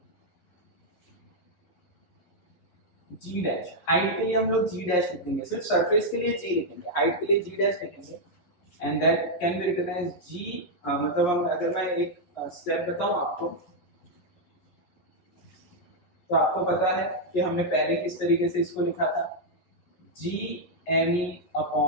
जी डैश, हाइट के लिए हम लोग जी डैश लिखेंगे, सिर्फ सरफेस के लिए जी लिखेंगे, हाइट के लिए जी डैश लिखेंगे, and that can be written as g. मतलब हम अगर मैं एक स्टेप बताऊं आपको, तो आपको पता है कि हमने पहले किस तरीके से इसको लिखा था, g M E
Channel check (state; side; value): late; right; 11 ms